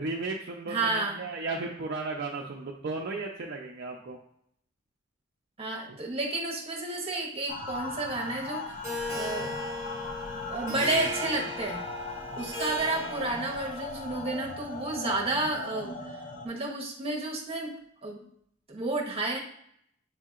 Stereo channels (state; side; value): normal; both; correlation 0.06